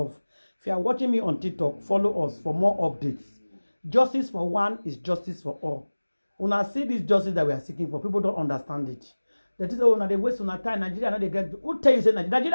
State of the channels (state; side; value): inverted; both; correlation -1.00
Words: If you are watching me on TikTok, follow us for more updates. Justice for one is justice for all. When I see this justice that we are seeking for, people don't understand it. That is, oh, now they waste on time. Nigeria, now they get. Who tell you say